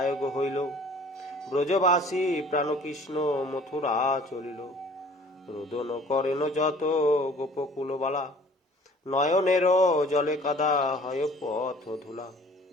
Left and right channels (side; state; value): both; normal; correlation 0.51